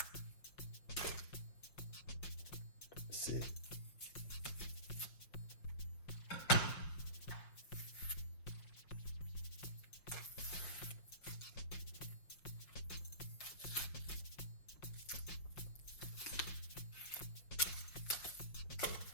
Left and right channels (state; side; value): late; right; 5.6 ms